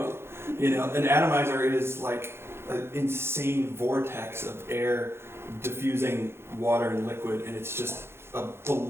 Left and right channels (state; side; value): late; left; 0.12 ms